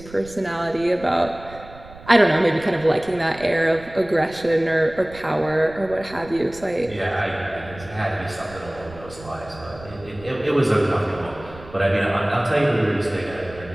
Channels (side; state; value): right; noise; rumble, 18 dB below the sound